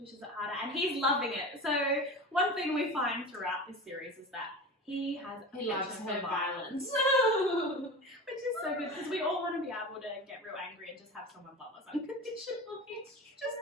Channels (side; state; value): both; normal; correlation 0.31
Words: pushes it harder, and he's loving it. So one thing we find throughout this series is that he has a He loves penchant her for violence. which is so good because we all want to be able to get real angry and just have someone love us unconditionally. Just